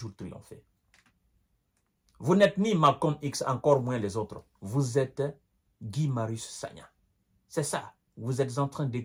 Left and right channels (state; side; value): identical; both; correlation 1.00